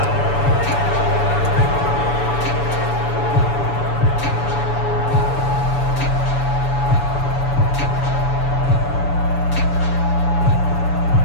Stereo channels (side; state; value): right; late; 7.0 ms